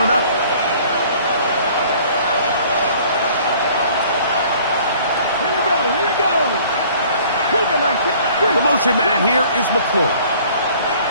up. Here we go. The motion man here is McLaurin.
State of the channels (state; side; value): inverted; both; correlation -0.53